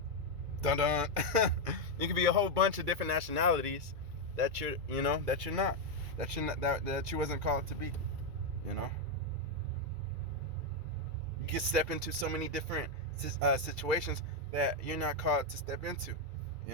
dun. You could be a whole bunch of different nationalities that you're not, that you wasn't called to be. You know, you can step into so many different situations that you're not called to step into.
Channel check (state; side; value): late; left; 2.3 ms